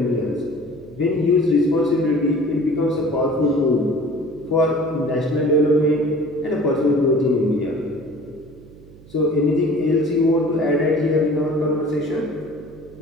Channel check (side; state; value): right; noise; hum, 22 dB below the sound